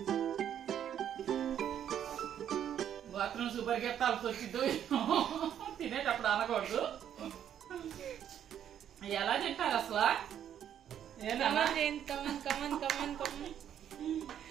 బాత్రూమ్ సూపర్ గెత్తాల్సి వచ్చిందో తినేటప్పుడు అనకూడదు. ఎలా తింటారు అసలు?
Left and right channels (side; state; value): left; quieter; 9.8 dB